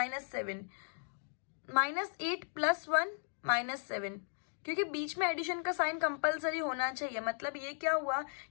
-8 + 1 -7. क्योंकि बीच में एडिशन का साइन कंपलसरी होना चाहिए. मतलब ये क्या हुआ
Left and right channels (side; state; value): right; silent; digital silence